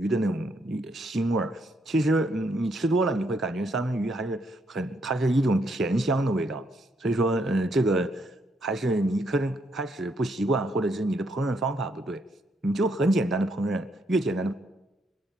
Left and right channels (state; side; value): normal; both; correlation 0.74